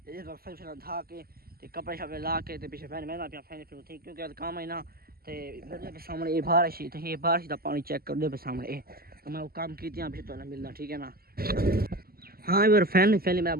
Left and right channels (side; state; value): left; late; 0.44 ms